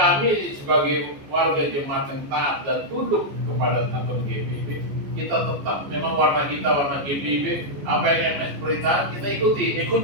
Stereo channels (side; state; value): left; late; 14 ms